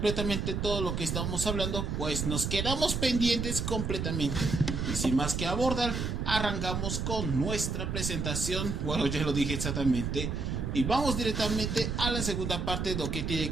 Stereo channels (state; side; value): noise; right; rumble, 2 dB below the sound